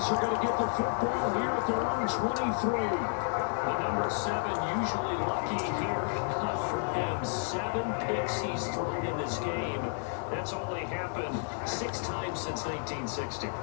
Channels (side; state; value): right; silent; 57 dB below the other